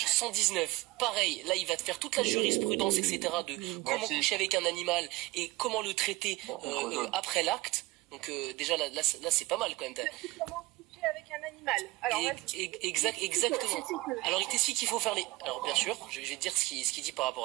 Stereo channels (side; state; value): left; quieter; 20.5 dB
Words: 119. Pareil, là il va te faire toute la jurisprudence, etc. de comment coucher avec un animal et comment le traiter après l'acte. Donc déjà là c'est pas mal quand même. Comment coucher avec un animal. Alors, exactement. Alors il t'explique qu'il faut faire les... Alors bien sûr, je vais te dire ce qu'il dit par